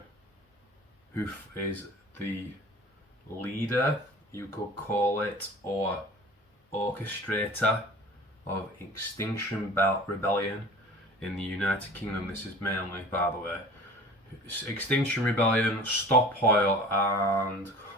who is the leader, you could call it, or orchestrator of Extinction Rebellion in the United Kingdom. This is mainly, by the way, Extinction Rebellion, Stop Oil, and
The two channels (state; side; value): normal; both; correlation 0.42